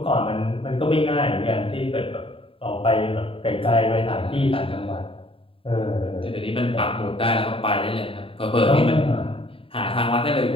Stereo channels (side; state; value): right; late; 0.27 ms